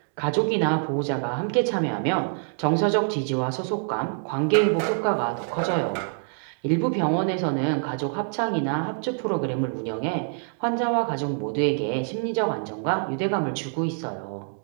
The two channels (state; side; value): silent; left; 61 dB below the other